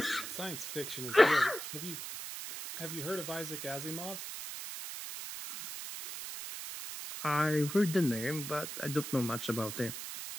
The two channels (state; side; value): noise; right; hiss, 7 dB below the sound